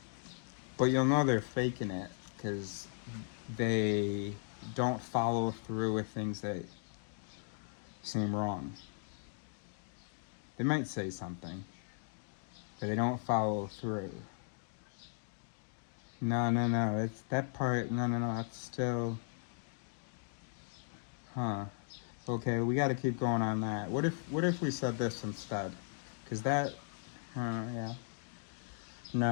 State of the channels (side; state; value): right; silent; digital silence